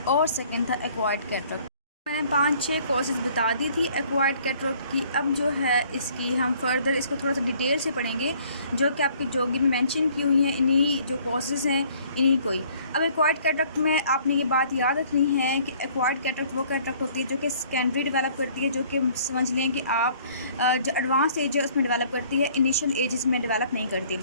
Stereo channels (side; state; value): both; inverted; correlation -0.57